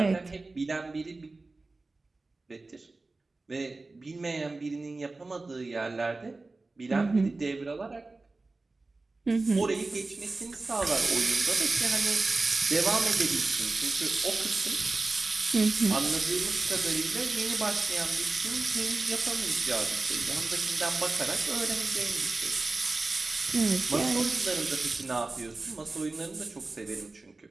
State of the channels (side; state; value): left; quieter; 3.4 dB